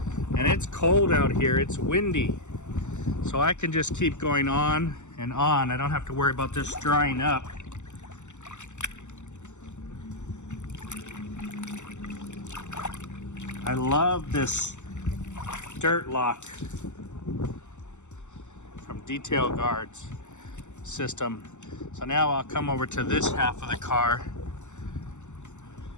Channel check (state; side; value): late; right; 0.84 ms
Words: And it's cold out here, it's windy. So I can just keep going on and on. I don't have to worry about this drying up. I love this dirt lock from Detail Guard's system. So now I'll come over to this half of the car